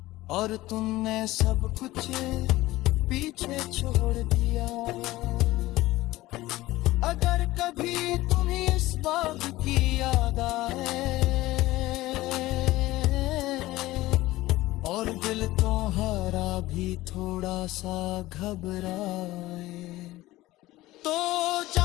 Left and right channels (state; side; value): quieter; right; 17.6 dB